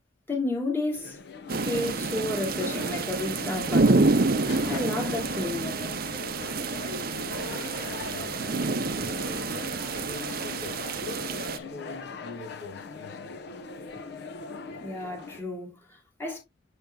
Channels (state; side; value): normal; both; correlation 0.45